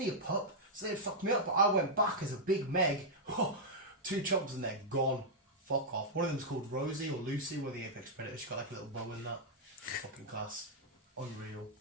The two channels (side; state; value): both; normal; correlation -0.06